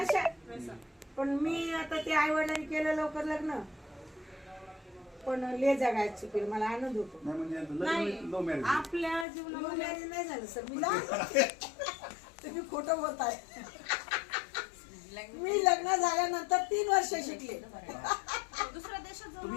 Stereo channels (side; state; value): right; drops out; at 9.2 s